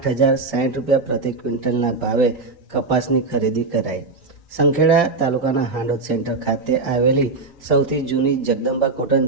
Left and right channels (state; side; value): quieter; left; 3.7 dB